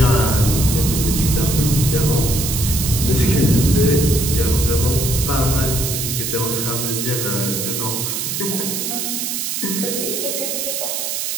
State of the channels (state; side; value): noise; right; hiss, 2 dB below the sound